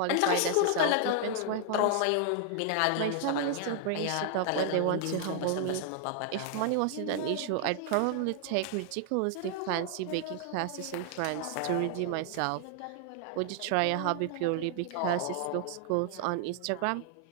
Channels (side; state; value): both; different; correlation 0.00